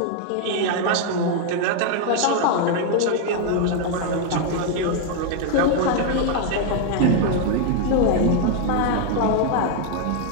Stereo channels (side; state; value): both; different; correlation 0.00